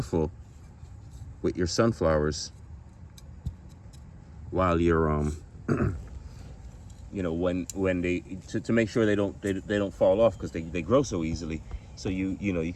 with your sunflowers while you're you know, when they to make sure they don't fall off, because they grow so easily. So you know, you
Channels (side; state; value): both; identical; correlation 1.00